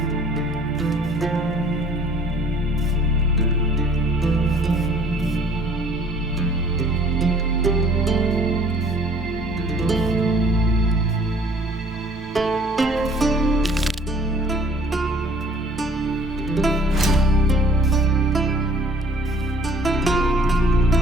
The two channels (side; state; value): both; normal; correlation 0.54